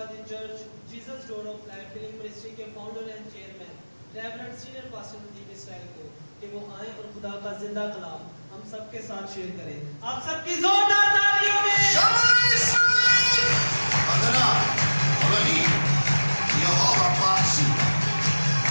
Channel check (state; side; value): inverted; both; correlation -1.00